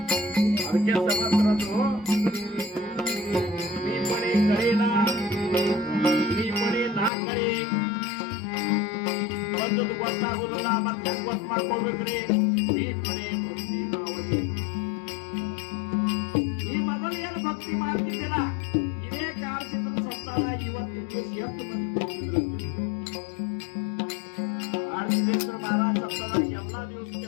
ಅದಕ್ಕೆ ಸಮರ್ಥರದ್ದು ನೀಪಣೆ ಕಳೆನ, ನೀಪಣೆ ನಾ ಕಳೆ ಒಂದದ್ದು ಗೊತ್ತಾಗುದಿಲ್ಲ. ಮತ್ತೆ ಹೆಂಗ್ ಗೊತ್ತು ಮಾಡ್ಕೊಳ್ಬೇಕ್ರಿ? ನೀಪಣೆ ಭಕ್ತಿ ಮಾವಳಿ. ಈ ಮೊದಲು ಏನು ಭಕ್ತಿ ಮಾಡ್ತಿದ್ದಿಲ್ಲ, ಇದೇ ಕಾರ್ಸಿದ್ರ ಸತ್ತಾಗ ಇವತ್ತಿನ ದಿವಸ ಎಷ್ಟು ಮಂದಿ ಕೂತಿದ್ರಂತೆ. ಆರ್ಸಿದ್ದೇಶ್ವರ ಮಹಾರಾಜ ಸತ್ತಾಗ ಎಲ್ಲಾ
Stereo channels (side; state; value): right; drops out; at 7.1 s